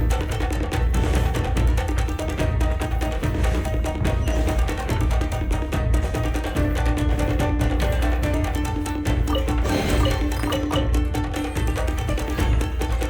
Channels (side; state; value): both; identical; correlation 1.00